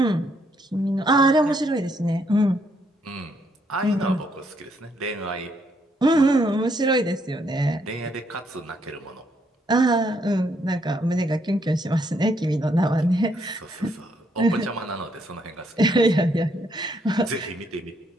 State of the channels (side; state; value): both; normal; correlation 0.73